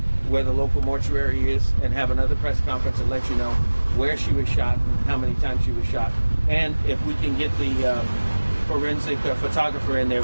where the local mortuary is and have another press conference and let you know where she was shot and how many times she was shot. And if we can get the forensic photographer in there,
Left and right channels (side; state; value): both; inverted; correlation -1.00